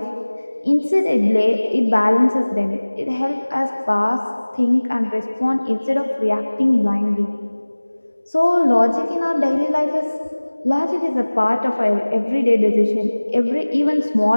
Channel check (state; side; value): inverted; both; correlation -1.00